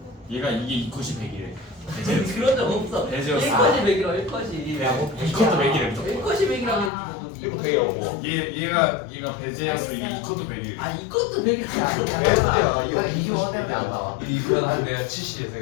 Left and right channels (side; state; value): right; drops out; at 6.9 s